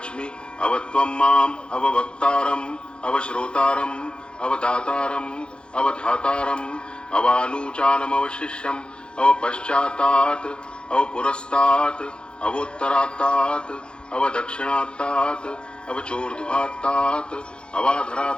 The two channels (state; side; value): late; right; 0.054 ms